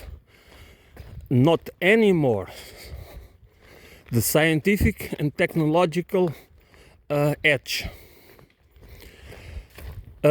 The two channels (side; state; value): both; identical; correlation 1.00